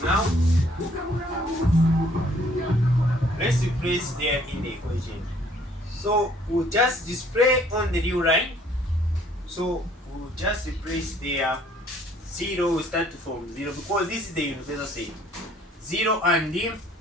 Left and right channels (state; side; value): normal; both; correlation 0.60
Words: now. Let's replace there in the equation. So we'll just display on the new line. So we'll just replace there 0, will start from 0 because this is the universal set. 0 and